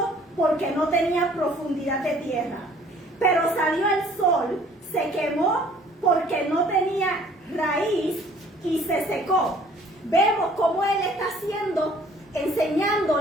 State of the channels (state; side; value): normal; both; correlation 0.55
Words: porque no tenía profundidad de tierra. Pero salió el sol, se quemó porque no tenía raíz y se secó. Vemos cómo él está haciendo,